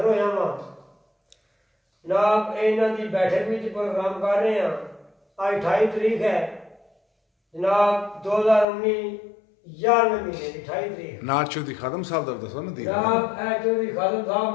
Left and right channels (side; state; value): right; drops out; at 8.7 s